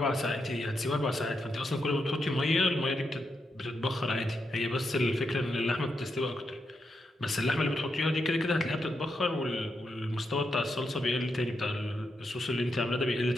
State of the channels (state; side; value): normal; both; correlation 0.84